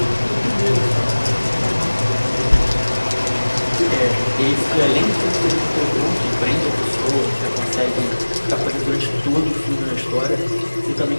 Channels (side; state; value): both; inverted; correlation -1.00